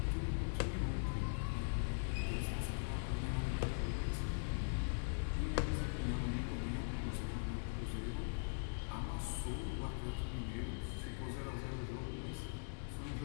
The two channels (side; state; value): right; silent; digital silence